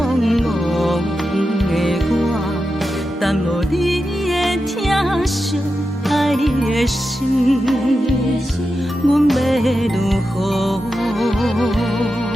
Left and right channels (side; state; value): both; normal; correlation 0.90